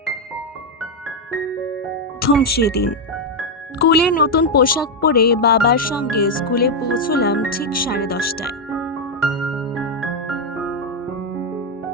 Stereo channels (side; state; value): both; normal; correlation 0.03